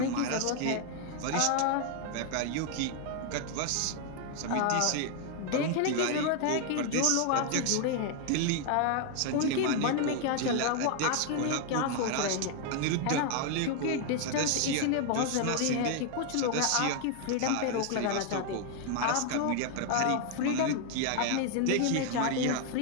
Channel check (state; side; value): different; both; correlation 0.00